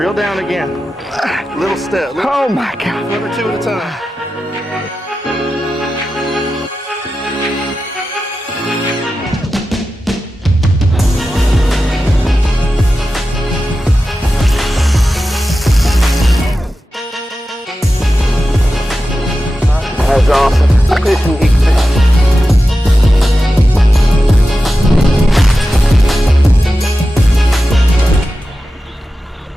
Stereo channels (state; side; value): normal; both; correlation 0.92